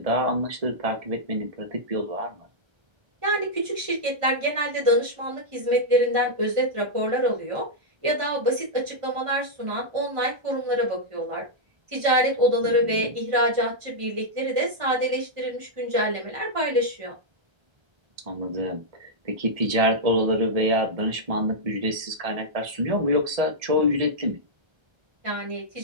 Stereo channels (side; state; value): left; late; 1.3 ms